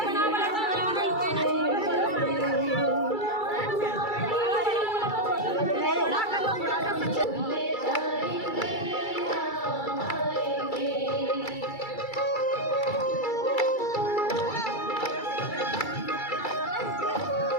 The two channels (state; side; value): late; right; 2.3 ms